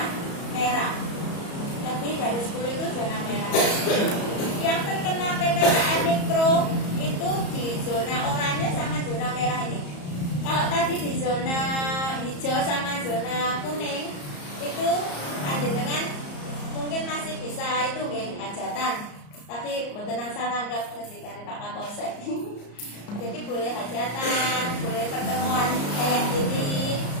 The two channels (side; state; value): right; late; 34 ms